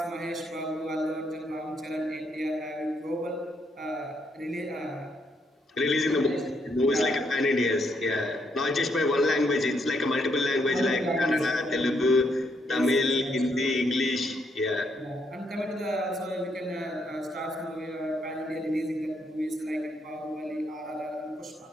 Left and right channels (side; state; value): both; normal; correlation 0.75